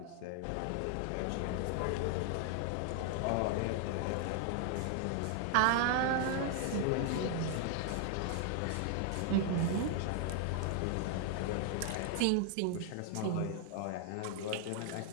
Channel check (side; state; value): both; different; correlation 0.00